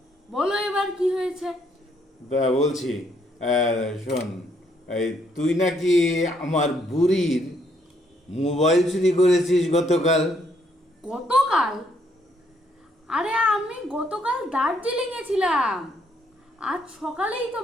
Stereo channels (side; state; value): both; normal; correlation 0.71